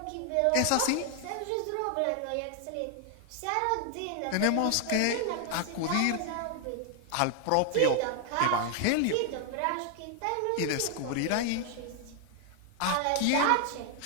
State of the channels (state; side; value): different; both; correlation 0.00